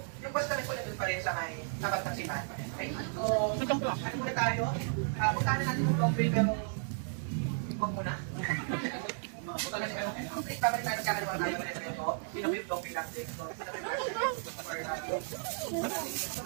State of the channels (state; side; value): silent; left; 55 dB below the other